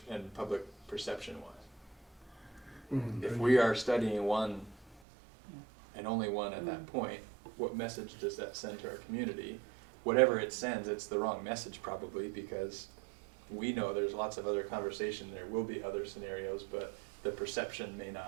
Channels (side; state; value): left; drops out; at 5.0 s